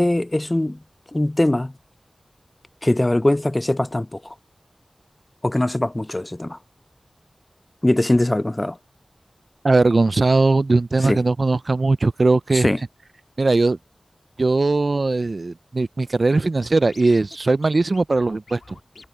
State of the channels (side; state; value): both; normal; correlation 0.98